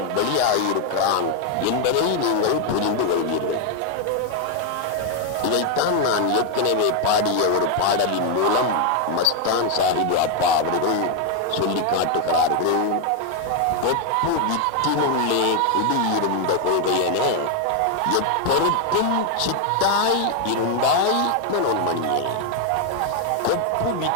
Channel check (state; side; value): different; both; correlation 0.01